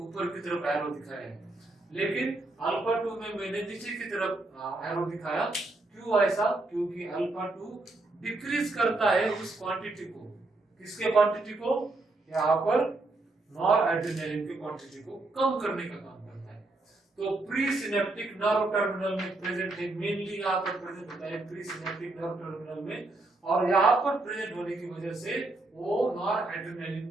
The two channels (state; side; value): quieter; left; 3.0 dB